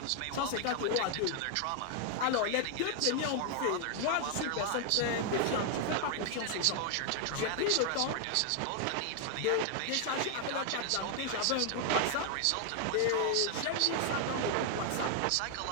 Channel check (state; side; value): different; both; correlation 0.00